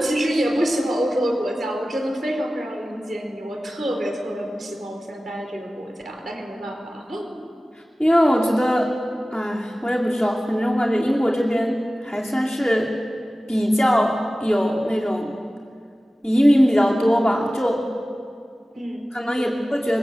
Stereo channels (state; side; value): normal; both; correlation 0.96